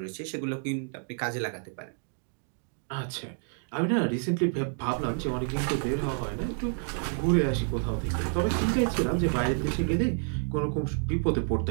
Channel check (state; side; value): silent; left; 56 dB below the other